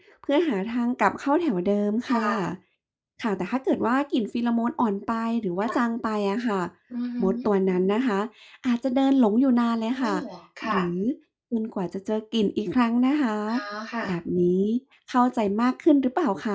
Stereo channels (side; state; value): both; identical; correlation 1.00